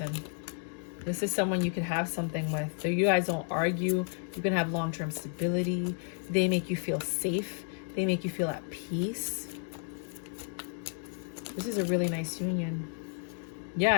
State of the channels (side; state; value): right; silent; 56 dB below the other